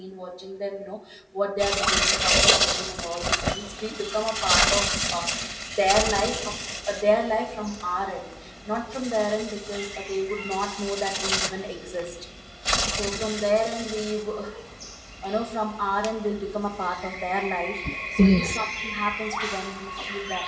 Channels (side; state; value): both; identical; correlation 1.00